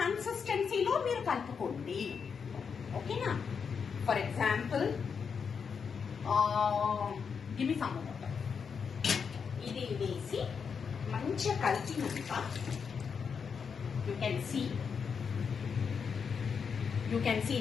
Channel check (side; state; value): right; quieter; 6.2 dB